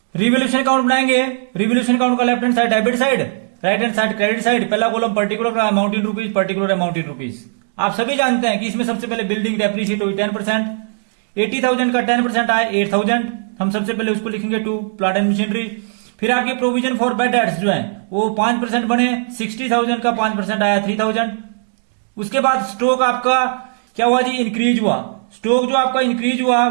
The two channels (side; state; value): left; silent; digital silence